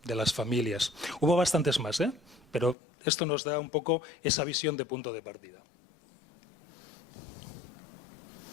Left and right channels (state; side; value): drops out; right; at 2.8 s